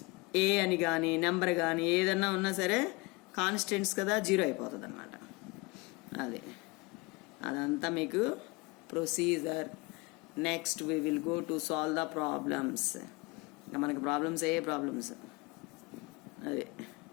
ఏ అని కానీ నెంబర్ కానీ ఏదన్నా ఉన్నా సరే కాన్స్టెంట్స్ కదా, 0 అయిపోతుంది అన్నమాట. అదంతా మీకు procedure. Next we will go to solve the problems. మనకి ప్రాబ్లమ్స్ అదే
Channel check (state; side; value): quieter; right; 25.5 dB